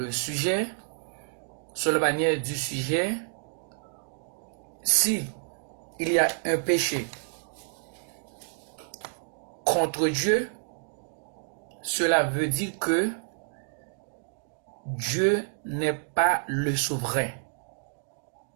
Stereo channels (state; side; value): silent; left; digital silence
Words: sujet, sur la manière du sujet. Si il y a un péché contre Dieu, cela veut dire que Dieu n'est pas le souverain.